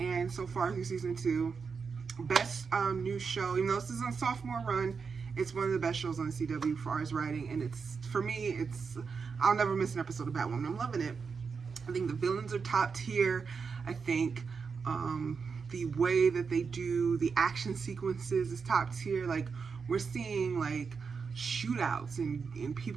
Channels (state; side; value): quieter; left; 5.5 dB